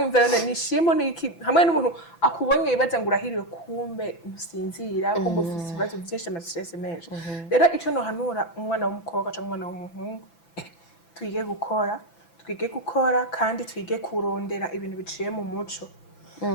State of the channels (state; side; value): late; right; 6.0 ms